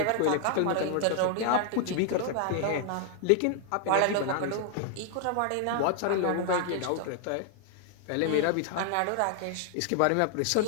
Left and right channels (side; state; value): both; different; correlation 0.00